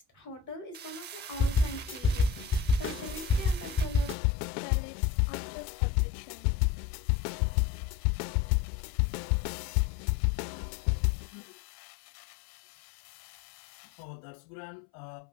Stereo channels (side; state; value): right; drops out; at 4.2 s